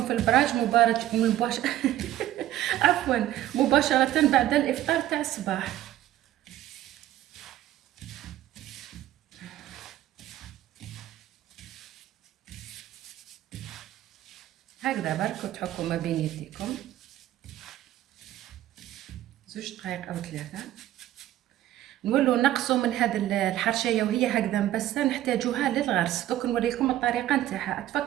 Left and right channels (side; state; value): left; quieter; 13.4 dB